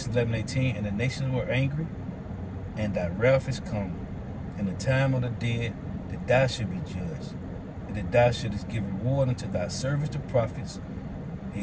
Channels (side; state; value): both; identical; correlation 1.00